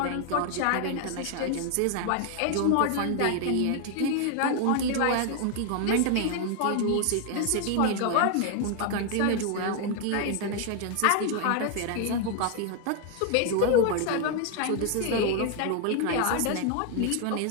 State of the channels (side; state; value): both; different; correlation 0.01